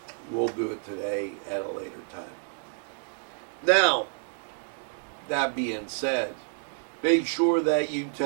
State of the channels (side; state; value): left; silent; digital silence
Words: we'll do it today at a later time. Now, that being said, make sure that you